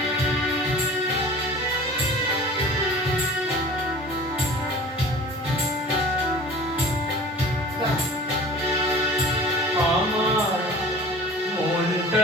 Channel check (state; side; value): normal; both; correlation 0.42